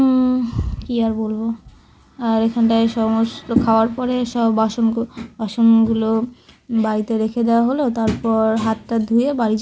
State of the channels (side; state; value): both; identical; correlation 1.00